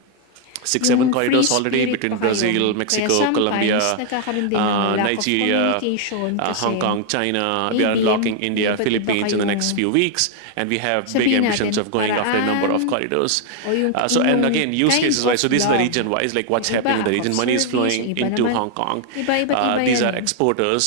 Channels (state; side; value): different; both; correlation 0.00